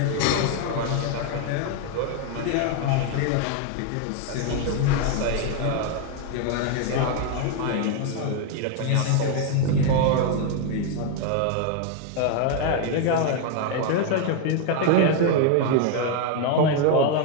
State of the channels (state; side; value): different; both; correlation 0.01